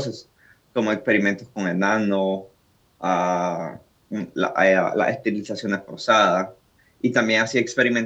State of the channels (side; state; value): both; identical; correlation 1.00